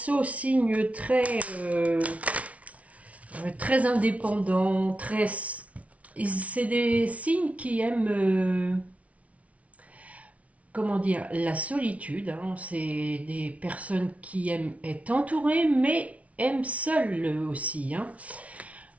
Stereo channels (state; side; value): late; left; 0.066 ms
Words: signe très indépendant, très... C'est des signes qui aiment, comment dire, la solitude. Hein. C'est des personnes qui aiment être entourées, mais aiment seules aussi. Hein.